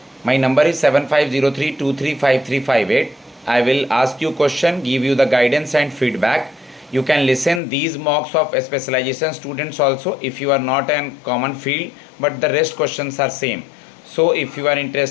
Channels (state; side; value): drops out; right; at 7.6 s